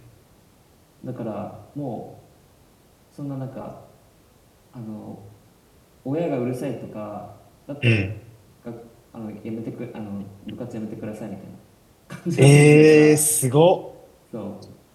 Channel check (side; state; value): both; identical; correlation 1.00